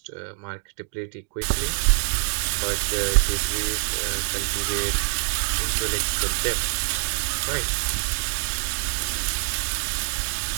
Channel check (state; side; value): silent; left; digital silence